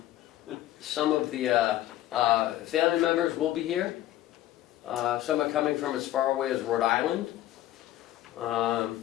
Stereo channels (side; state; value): right; quieter; 14.1 dB